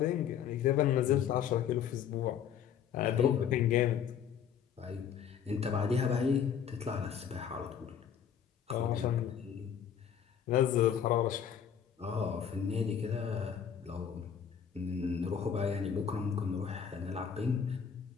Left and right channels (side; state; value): right; quieter; 8.2 dB